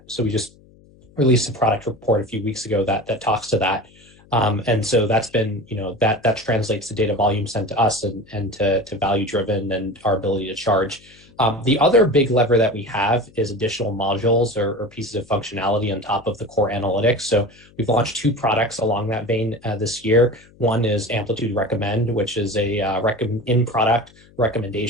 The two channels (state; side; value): noise; left; hum, 27 dB below the sound